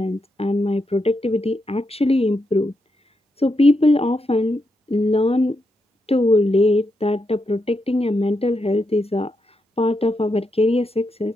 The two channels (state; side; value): normal; both; correlation 0.83